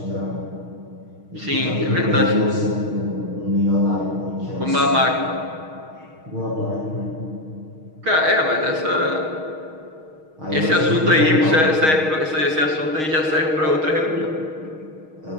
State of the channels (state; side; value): late; left; 6.4 ms